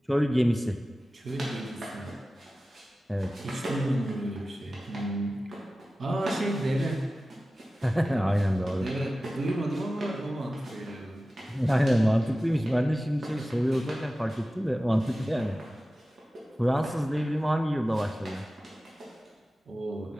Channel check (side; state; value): both; normal; correlation 0.96